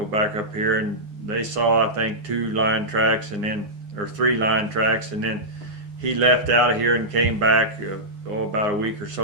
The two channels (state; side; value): late; left; 9.6 ms